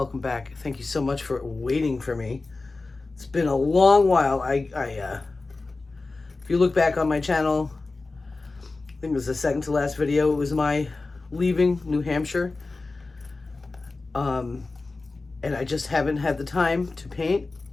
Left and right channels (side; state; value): right; quieter; 3.5 dB